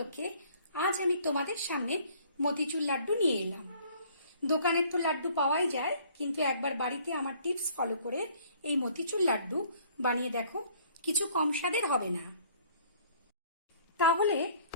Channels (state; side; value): inverted; both; correlation -0.57